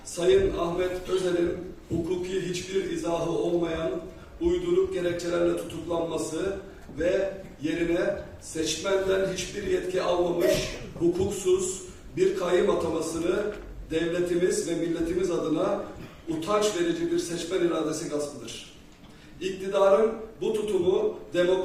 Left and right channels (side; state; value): both; identical; correlation 1.00